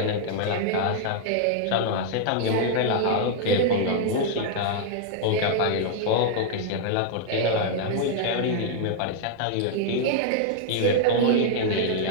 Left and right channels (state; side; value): different; both; correlation -0.01